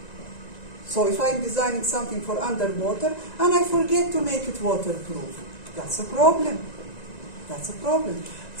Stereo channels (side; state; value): right; late; 1.9 ms